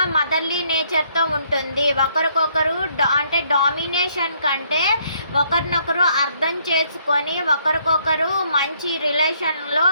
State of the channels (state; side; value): inverted; both; correlation -0.68